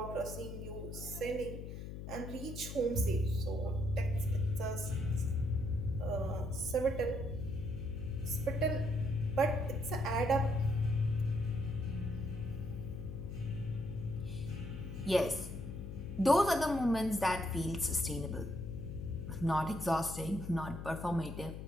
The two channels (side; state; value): left; noise; hum, 8 dB below the sound